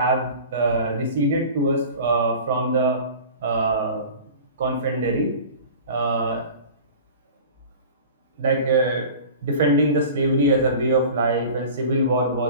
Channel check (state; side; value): inverted; both; correlation -0.39